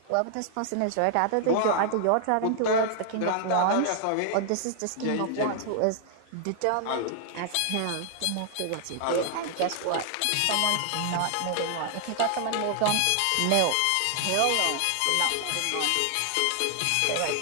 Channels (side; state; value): both; different; correlation 0.00